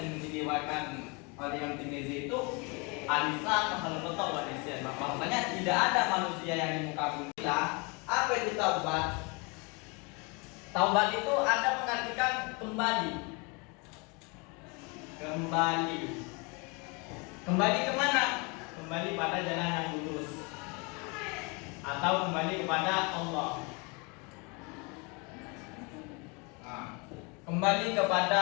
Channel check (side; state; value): right; quieter; 30.4 dB